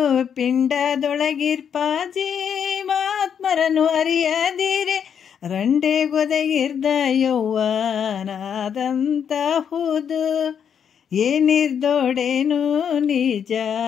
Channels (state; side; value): quieter; right; 7.9 dB